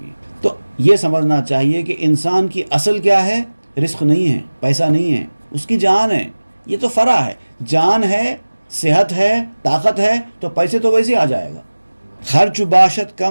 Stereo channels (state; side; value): inverted; both; correlation -1.00